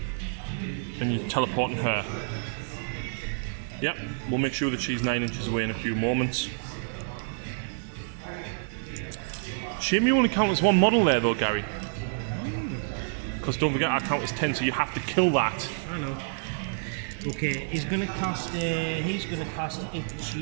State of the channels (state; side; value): silent; left; digital silence